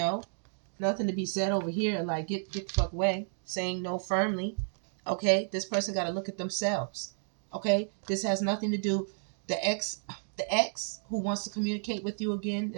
Nothing to be said over here like get the fuck away. Saying no firmly. Okay? This person got to look at themselves. Okay? This has nothing to do. The ex who wants to communicate with you again,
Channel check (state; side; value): silent; left; digital silence